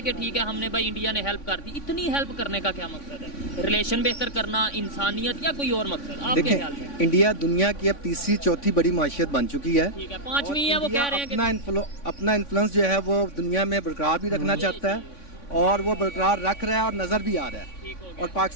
कि ठीक है हमने भाई इंडिया ने हेल्प कर दी। इतनी हेल्प करने का क्या मकसद है? रिलेशन बेहतर करना, इंसानियत, या कोई और मकसद आपके ख्याल में? देखें, इंडिया दुनिया की अब तीसरी चौथी बड़ी माशियत बन चुकी है। ठीक है, 5वीं है, वो कह रहे हैं कि अपना इन्फ्लुएंस जो है वो दुनिया में बरकरार भी रखना चाहता है और वो बरकरार रख रहा है और नजर भी आ रहा है। और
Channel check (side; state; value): right; late; 3.5 ms